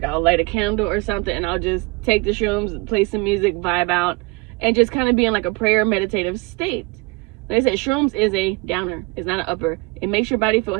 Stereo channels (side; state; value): left; quieter; 26.2 dB